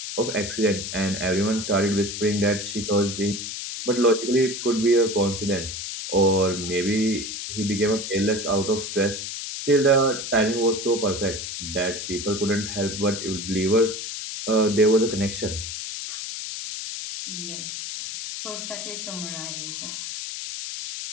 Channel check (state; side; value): noise; left; hiss, 6 dB below the sound